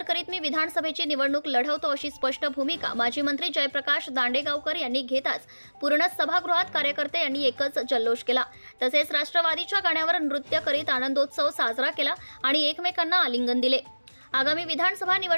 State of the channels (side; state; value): both; inverted; correlation -1.00